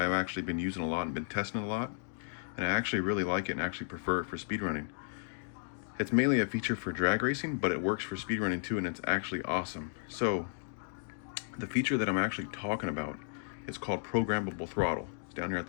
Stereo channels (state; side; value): silent; right; digital silence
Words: actually been using a lot and been testing a lot, and I actually really like it and actually prefer it for speedrunning. It's mainly a feature for drag racing, but it works for speedrunning too, and it's actually awesome. So the feature that I'm actually talking about is called Programmable Throttle. It's down here at